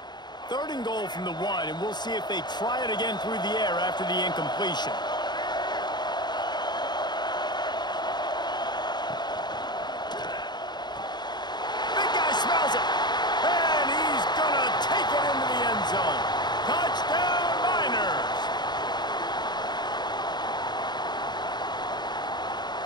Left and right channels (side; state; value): right; late; 0.21 ms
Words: Third and goal from the 1, and we'll see if they try it again through the air after the incompletion. Big guy smells it, and he's going to take it into the end zone. Touchdown, Miners!